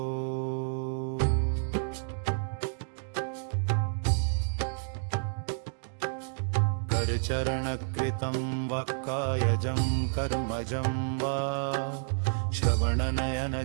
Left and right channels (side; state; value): left; silent; digital silence